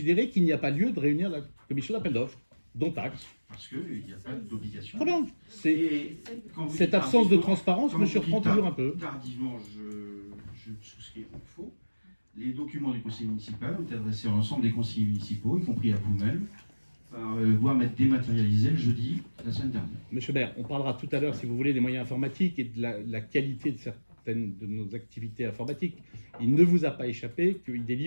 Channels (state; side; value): inverted; both; correlation -1.00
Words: qu'il n'y a pas lieu de réunir la commission d'appel d'offres, dont acte. Parce qu'il n'y a pas d'obligation. Très bien. Et quand vous Cette dites absence de tardivement- transparence quand me vous surprend dites toujours un peu. Tardivement, je souscris au faux. Les documents du conseil municipal ont été adressés à l'ensemble des conseillers municipaux, y compris à vous-même, par voie dématérialisée le jeudi la semaine dernière. Monsieur le maire, on parlera tout à l'heure, si vous voulez, des moyens informatiques et de la qualité de certaines de nos activités informatiques. Il ne vous a pas échappé que ID